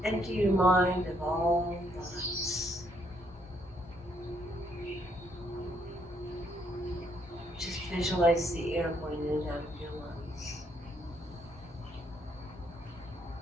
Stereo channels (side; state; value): both; normal; correlation 0.72